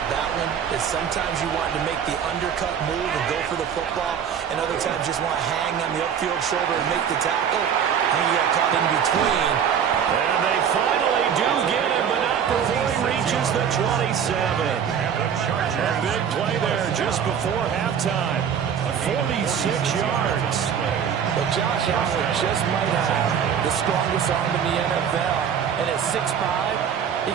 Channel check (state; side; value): quieter; left; 8.0 dB